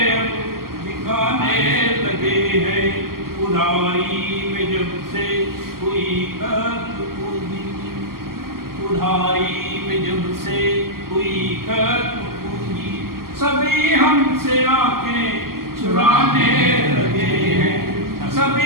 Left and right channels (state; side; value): late; left; 0.92 ms